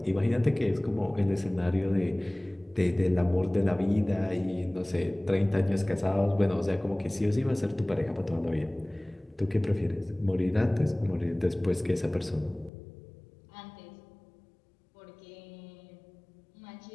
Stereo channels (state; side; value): drops out; right; at 12.7 s